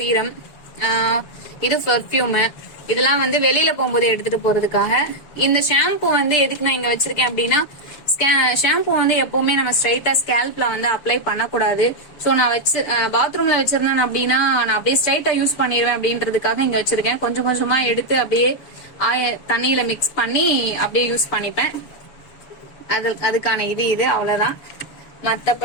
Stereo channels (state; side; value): late; right; 7.0 ms